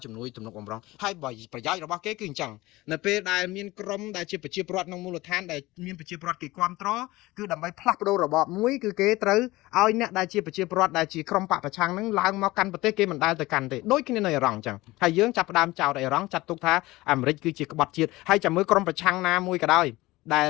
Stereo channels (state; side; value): quieter; right; 19.4 dB